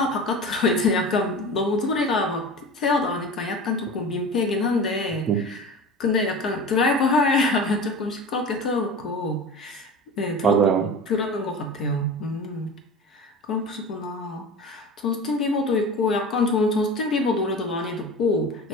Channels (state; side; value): normal; both; correlation 0.33